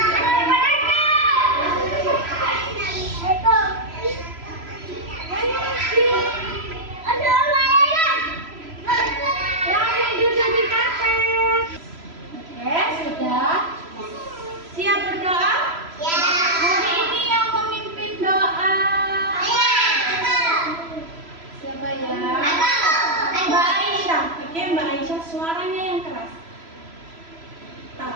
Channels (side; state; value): left; late; 3.0 ms